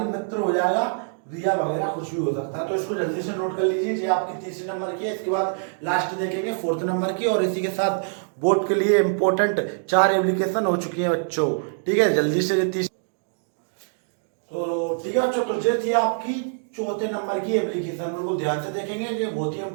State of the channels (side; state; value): left; silent; digital silence